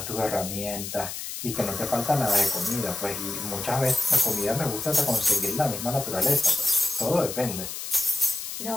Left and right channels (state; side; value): noise; left; hiss, 7 dB below the sound